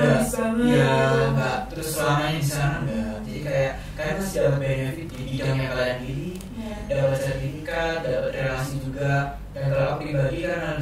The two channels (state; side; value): identical; both; correlation 1.00